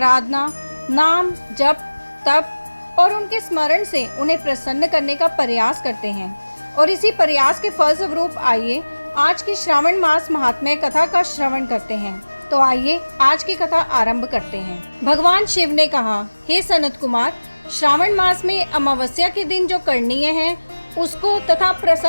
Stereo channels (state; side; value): inverted; both; correlation -1.00